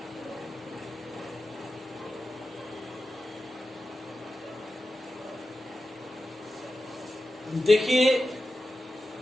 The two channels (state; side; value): normal; both; correlation 0.92